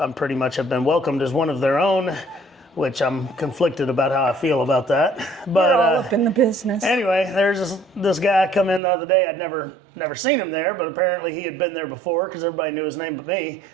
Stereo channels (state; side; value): drops out; left; at 8.8 s